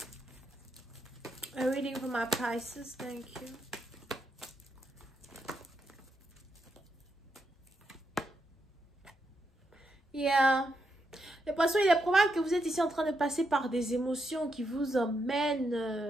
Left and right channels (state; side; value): normal; both; correlation 0.81